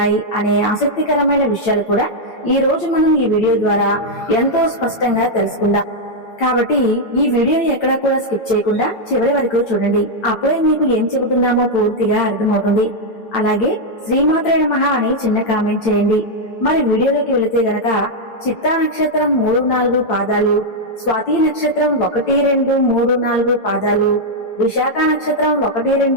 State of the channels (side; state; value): right; late; 8.8 ms